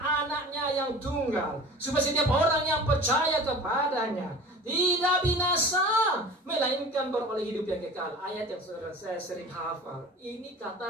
anaknya yang tunggal, supaya setiap orang yang percaya kepadanya tidak binasa, melainkan beroleh hidup yang kekal. Ayat yang saya sering hafal. Ini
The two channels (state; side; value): normal; both; correlation 0.39